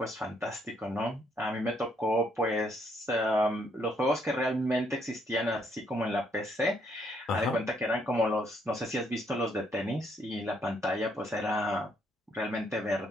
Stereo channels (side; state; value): both; normal; correlation 0.71